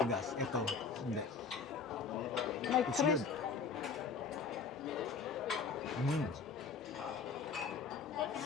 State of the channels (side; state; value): right; quieter; 5.3 dB